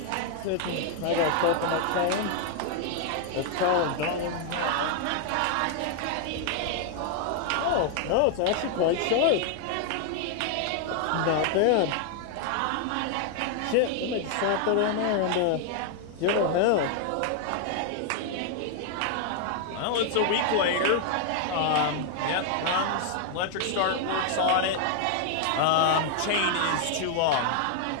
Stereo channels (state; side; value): different; both; correlation 0.00